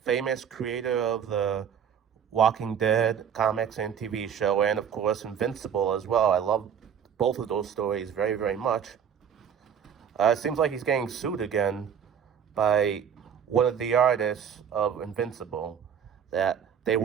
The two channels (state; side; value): quieter; left; 7.9 dB